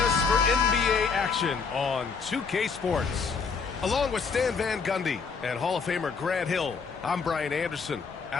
for NBA action on 2K Sports. Along with Stan Van Gundy and Hall of Famer Grant Hill, I'm Brian Anderson.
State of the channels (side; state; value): right; quieter; 5.3 dB